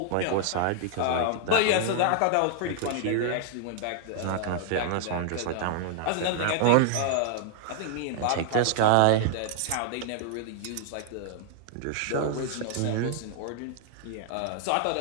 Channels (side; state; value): both; different; correlation 0.00